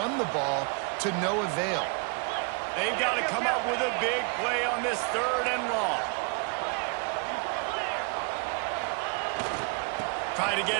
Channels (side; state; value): left; quieter; 35.5 dB